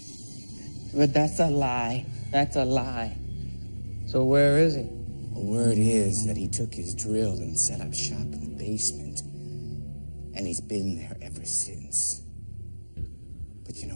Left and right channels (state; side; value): inverted; both; correlation -1.00